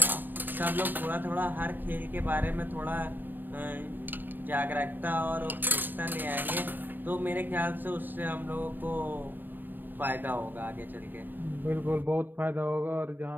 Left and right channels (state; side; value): late; left; 0.091 ms